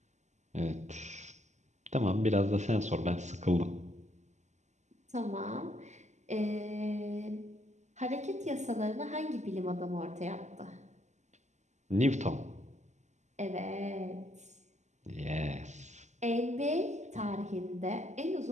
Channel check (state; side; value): late; left; 0.34 ms